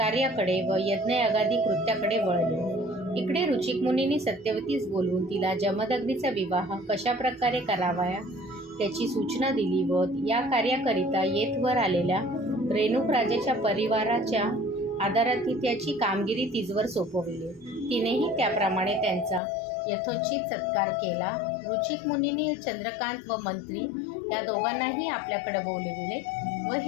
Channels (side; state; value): right; drops out; at 19.4 s